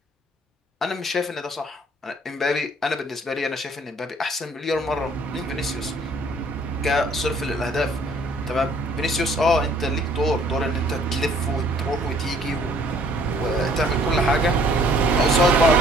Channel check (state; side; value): normal; both; correlation 0.59